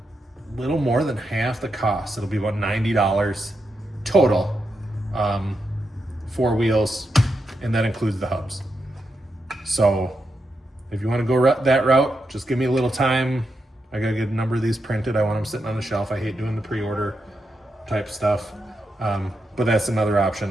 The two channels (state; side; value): normal; both; correlation 0.85